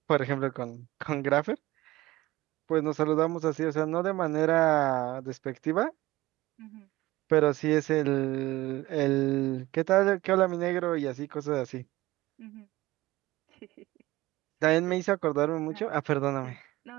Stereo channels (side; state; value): left; quieter; 18.2 dB